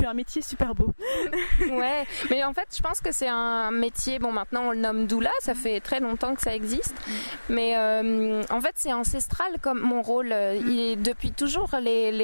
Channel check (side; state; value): both; inverted; correlation -1.00